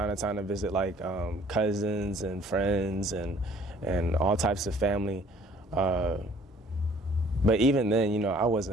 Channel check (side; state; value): both; normal; correlation 0.56